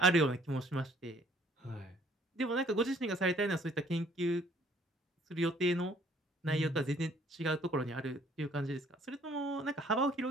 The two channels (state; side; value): normal; both; correlation 0.60